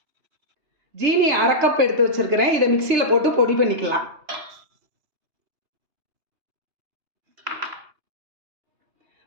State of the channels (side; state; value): left; late; 2.9 ms